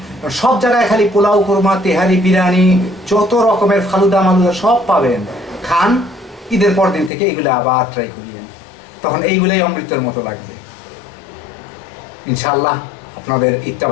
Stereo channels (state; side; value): drops out; right; at 7.1 s